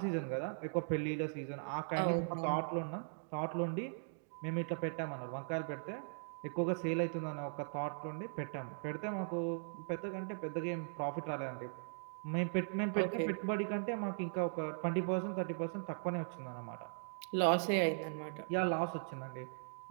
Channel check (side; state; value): left; silent; digital silence